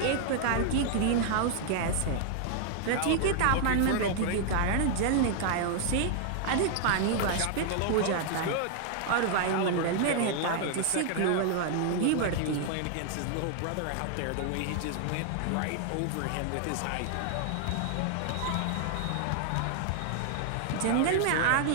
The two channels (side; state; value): both; different; correlation 0.00